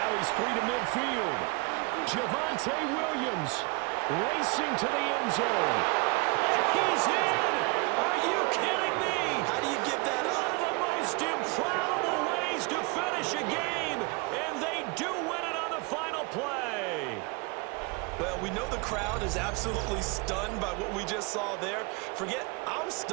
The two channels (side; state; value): left; quieter; 28.3 dB